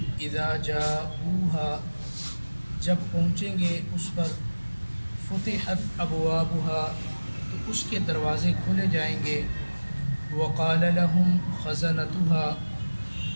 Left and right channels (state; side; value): inverted; both; correlation -1.00